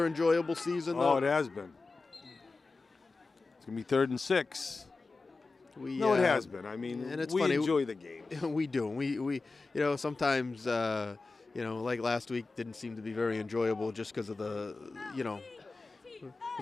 enjoyable season, though. Oh, it has been. It's going to be 3rd and 6. It has been. I mean, and it's we funny. enjoy the game. We do. We sometimes, like last week didn't seem to be very enjoyable just because of the, it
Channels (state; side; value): quieter; right; 3.8 dB